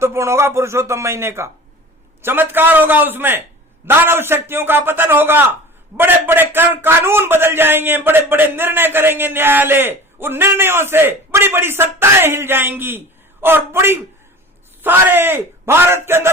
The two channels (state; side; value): normal; both; correlation 0.39